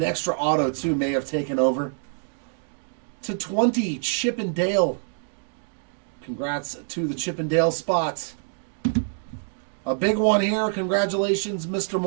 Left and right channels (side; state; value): left; silent; 61 dB below the other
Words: extra auto, too, may have taken over. To 20, Chip and Dale. Congrats to the Chip and Dale spot. A big one here. Congratulations, Mr.